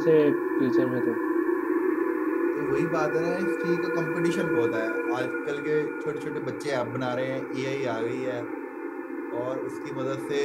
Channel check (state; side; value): identical; both; correlation 1.00